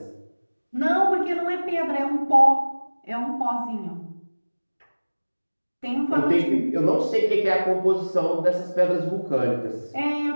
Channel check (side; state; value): both; inverted; correlation -1.00